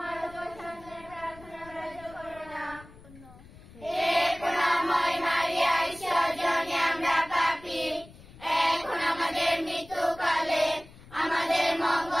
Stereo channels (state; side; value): noise; left; rumble, 21 dB below the sound